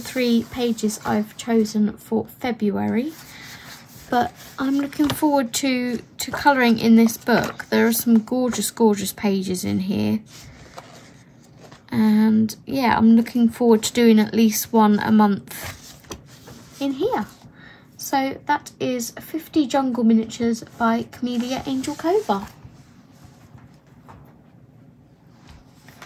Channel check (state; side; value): identical; both; correlation 1.00